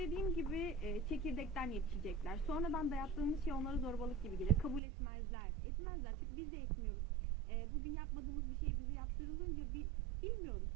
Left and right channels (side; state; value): left; drops out; at 4.8 s